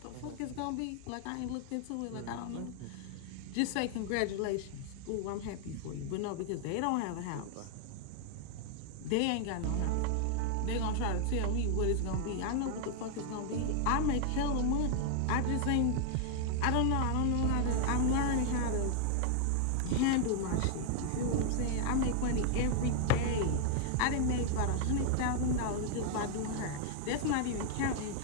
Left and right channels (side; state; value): both; different; correlation 0.00